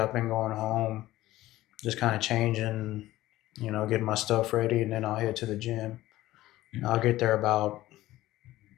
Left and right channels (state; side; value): quieter; right; 16.0 dB